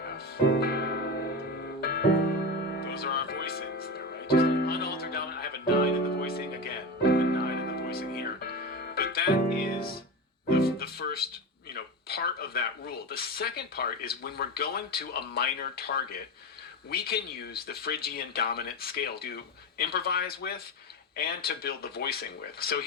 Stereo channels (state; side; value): normal; both; correlation 0.23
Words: F. Those are our voicings there, right? Just an unaltered dominant. I have a 9 in the voicing again. A 9 in the voicing here. But that is the first, part of that rule. The second part is when we're going to a minor target, we can use the Phrygian dominant scale to improvise with and to build the voicing with. So